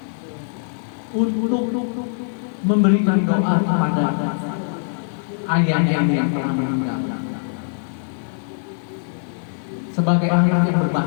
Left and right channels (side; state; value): right; silent; digital silence